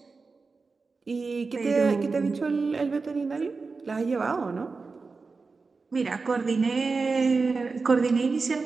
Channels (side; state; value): left; quieter; 4.3 dB